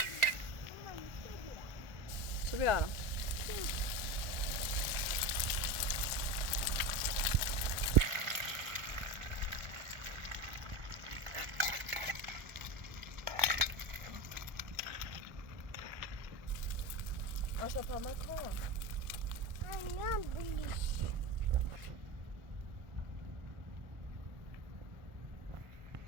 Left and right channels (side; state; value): left; late; 1.4 ms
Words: چه بیارم آشا پامه کن